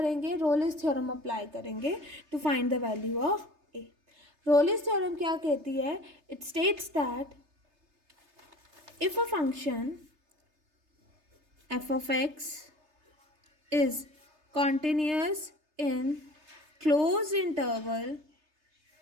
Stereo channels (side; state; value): left; late; 3.3 ms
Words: रोलिस थ्योरम अप्लाई करेंगे to find the value of A. Rolle's theorem क्या कहती है, it states that if a function F of X is continuous in closed interval